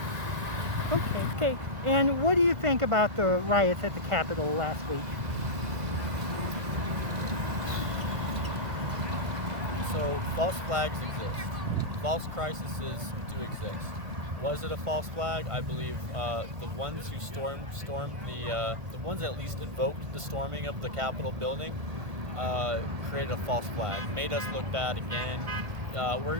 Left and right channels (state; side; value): late; left; 1.5 ms